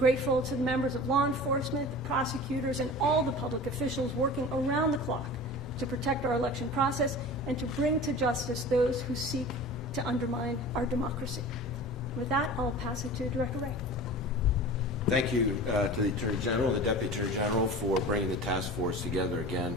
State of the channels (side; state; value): both; normal; correlation 0.37